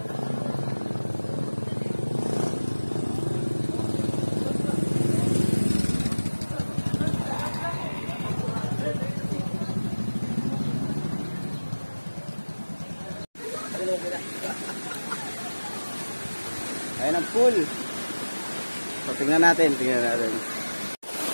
pool. So, tingnan natin. Ito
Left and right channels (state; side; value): inverted; both; correlation -1.00